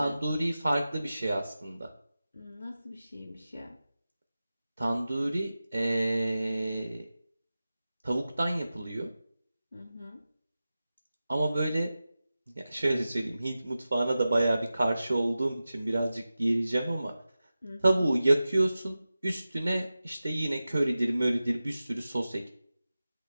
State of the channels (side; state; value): both; inverted; correlation -0.94